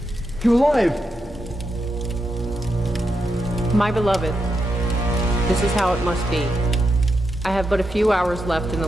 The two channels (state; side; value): normal; both; correlation 0.85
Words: You're alive! My beloved, this is how it must be. I have but a few hours left in